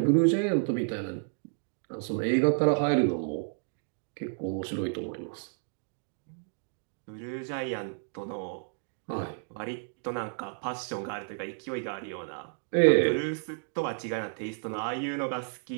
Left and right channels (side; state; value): left; silent; digital silence